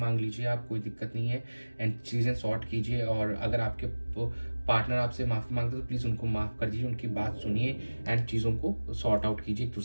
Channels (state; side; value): inverted; both; correlation -1.00